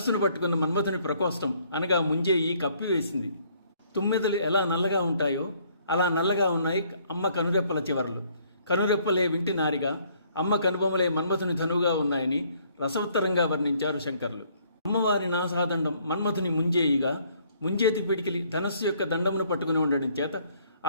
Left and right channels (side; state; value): both; inverted; correlation -0.64